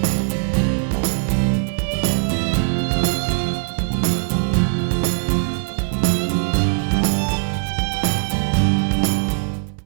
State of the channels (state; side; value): silent; left; 66 dB below the other